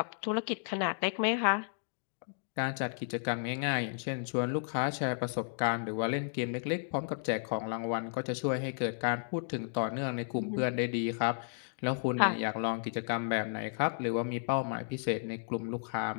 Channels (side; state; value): right; silent; digital silence